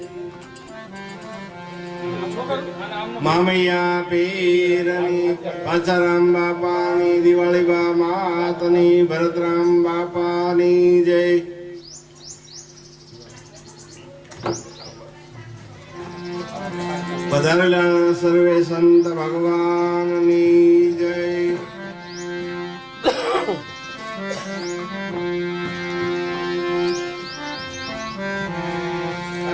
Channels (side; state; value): both; identical; correlation 1.00